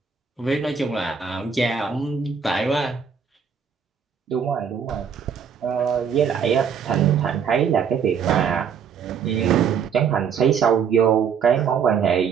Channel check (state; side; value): quieter; left; 6.9 dB